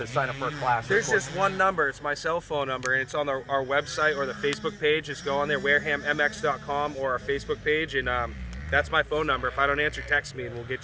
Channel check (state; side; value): identical; both; correlation 1.00